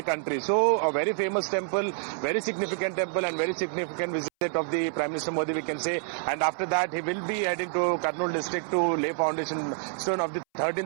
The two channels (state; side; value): silent; left; 60 dB below the other